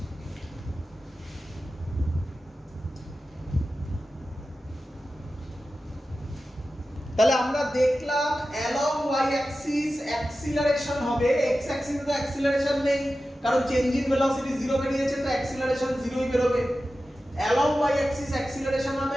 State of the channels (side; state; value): both; normal; correlation 0.93